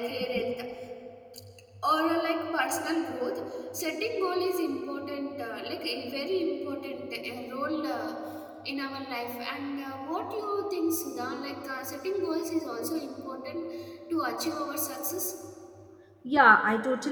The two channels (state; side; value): identical; both; correlation 1.00